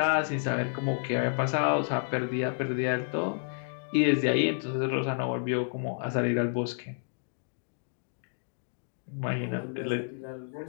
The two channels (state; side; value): silent; right; digital silence